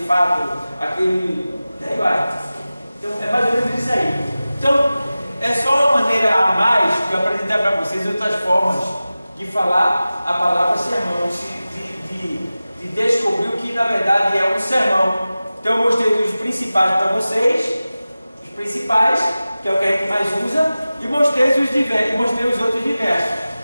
fato, aquele. Daí vai. Então, é mais ou menos isso aí. Então, é só uma maneira a mais de eu apresentar para vocês outras formas de falar a palavra sermão, de descobrir o que na verdade é um sermão. Então, eu mostrei os principais para vocês, os principais, que é o que a gente mais usa, e mostrei os outros diversos.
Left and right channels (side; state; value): both; inverted; correlation -0.96